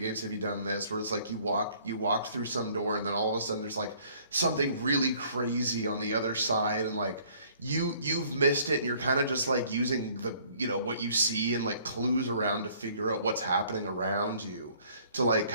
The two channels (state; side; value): inverted; both; correlation -0.58